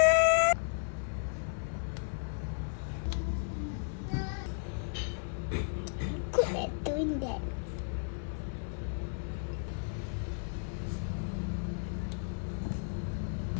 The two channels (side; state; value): right; silent; 55 dB below the other